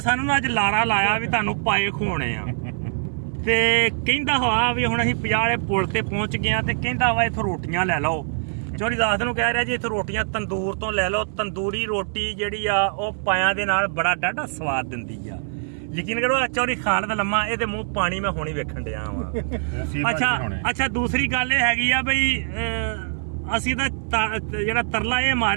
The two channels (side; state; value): left; silent; digital silence